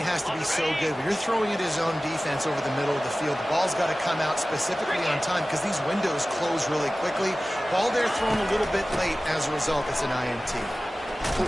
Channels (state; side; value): normal; both; correlation 0.97